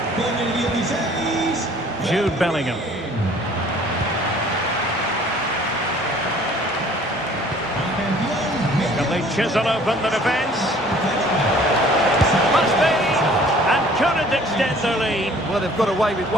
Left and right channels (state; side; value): normal; both; correlation 0.53